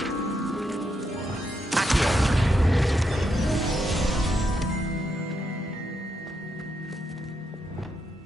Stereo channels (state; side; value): normal; both; correlation 0.81